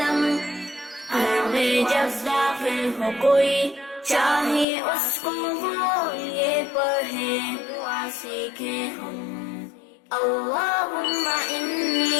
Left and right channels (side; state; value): right; drops out; at 4.7 s